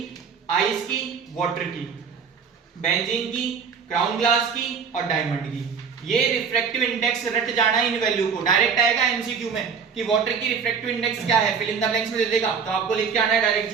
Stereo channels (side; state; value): left; quieter; 6.2 dB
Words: आइस की, वाटर की, बेंजीन की, क्राउन ग्लास की और डायमंड की। ये रिफ्रैक्टिव इंडेक्स रट जाना है इन वैल्यू को। डायरेक्ट आएगा एमसीक्यू में कि वाटर की रिफ्रैक्टिव इंडेक्स क्या है, फिल इन द ब्लैंक्स में दे देगा, तो आपको लिख के आना है डायरेक्ट